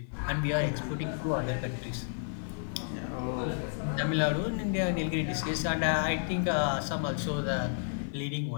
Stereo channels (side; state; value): right; silent; digital silence